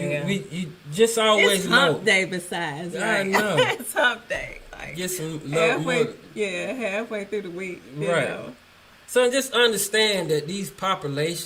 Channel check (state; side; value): identical; both; correlation 1.00